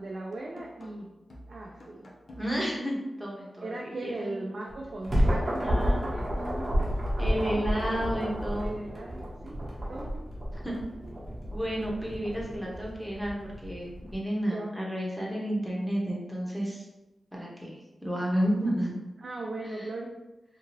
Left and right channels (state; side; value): normal; both; correlation 0.95